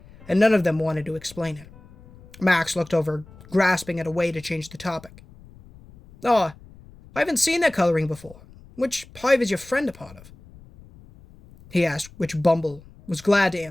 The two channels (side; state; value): left; noise; rumble, 22 dB below the sound